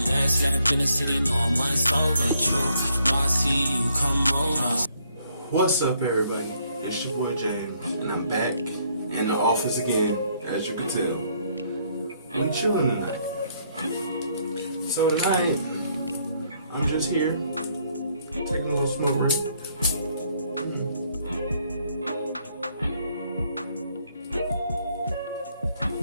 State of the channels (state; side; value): inverted; both; correlation -0.69